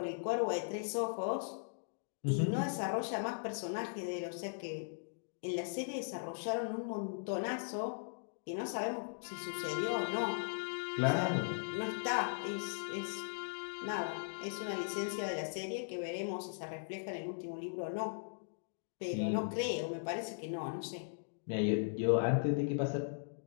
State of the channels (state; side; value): silent; right; digital silence